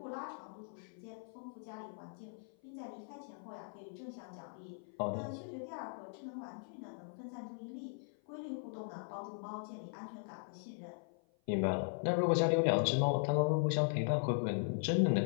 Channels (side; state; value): right; silent; 52 dB below the other